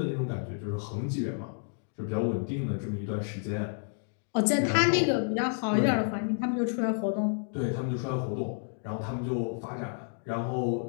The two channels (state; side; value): silent; right; 58 dB below the other